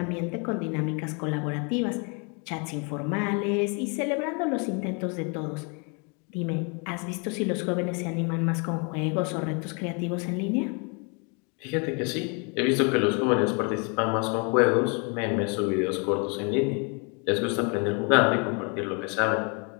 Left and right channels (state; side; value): quieter; right; 34.7 dB